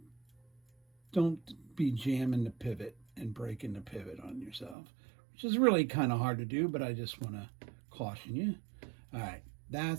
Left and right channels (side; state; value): left; drops out; at 4.8 s